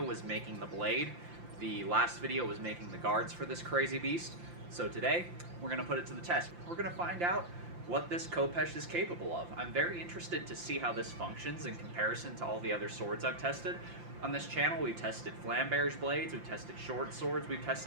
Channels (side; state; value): left; late; 5.8 ms